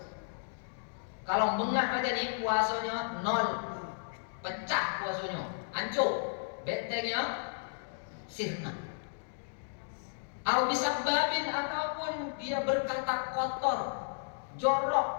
Kalau mengah aja nih puasanya nol, pecah puasanya, hancur, bentengnya sirna. Atau bisa babin, ataupun dia berkata kotor, jorok,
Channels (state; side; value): silent; right; digital silence